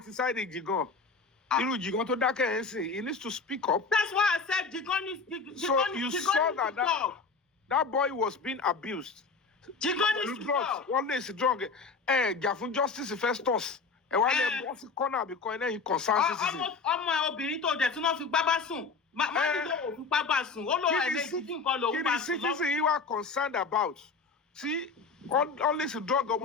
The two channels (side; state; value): right; quieter; 4.6 dB